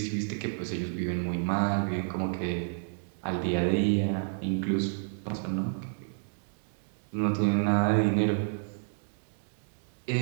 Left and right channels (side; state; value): left; silent; digital silence